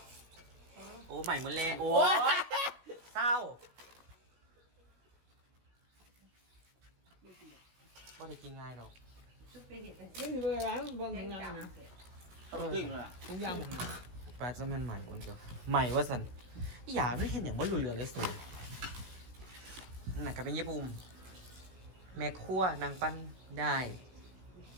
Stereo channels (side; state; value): left; late; 16 ms